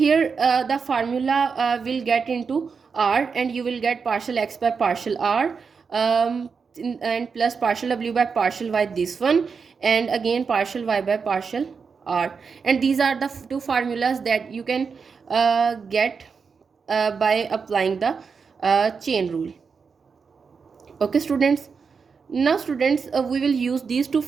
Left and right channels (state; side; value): quieter; left; 5.5 dB